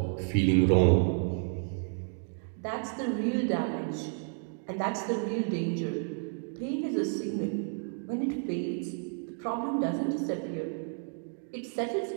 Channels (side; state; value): left; silent; 57 dB below the other